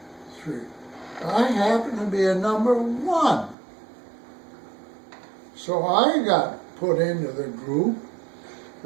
3. I happen to be a number 1. So I got put into the group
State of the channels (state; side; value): drops out; left; at 3.6 s